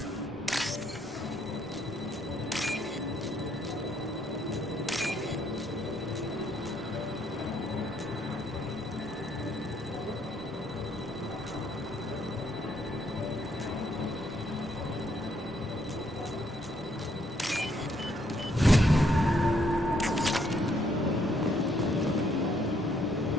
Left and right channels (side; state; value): both; normal; correlation 0.71